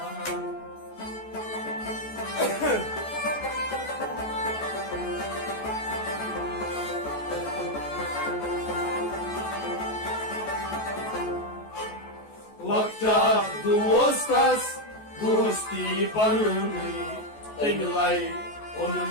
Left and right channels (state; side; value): late; right; 14 ms